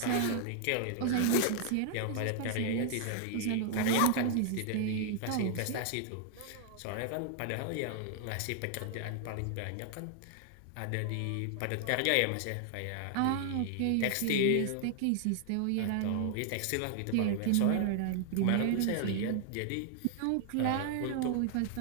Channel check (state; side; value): different; both; correlation 0.00